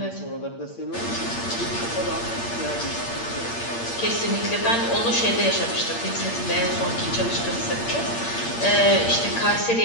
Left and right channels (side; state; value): right; late; 8.6 ms